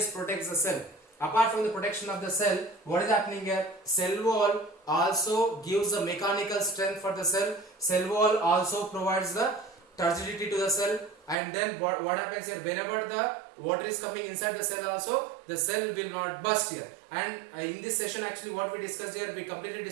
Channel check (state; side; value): drops out; left; at 11.4 s